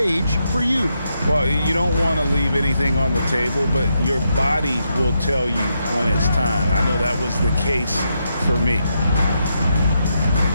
for you? Well, you don't want to leave anything on the table, but your body will tell you when it's time. I know that was the case for me.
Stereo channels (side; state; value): both; inverted; correlation -0.82